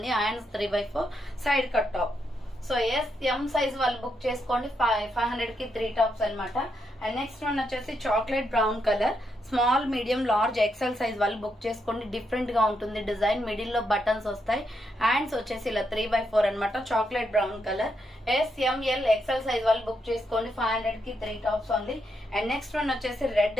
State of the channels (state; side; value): normal; both; correlation 0.80